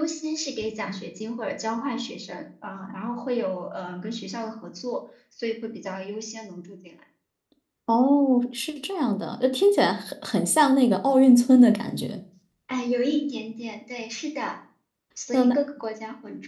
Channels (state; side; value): identical; both; correlation 1.00